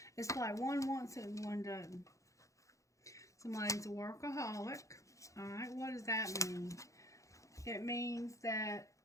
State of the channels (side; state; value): right; late; 0.15 ms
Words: It's like one wants it and one doesn't. Somebody's a workaholic. Alright, what does that mean? It means that